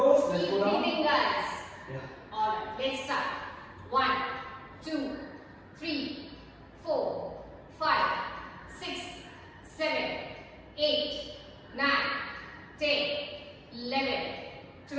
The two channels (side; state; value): both; identical; correlation 1.00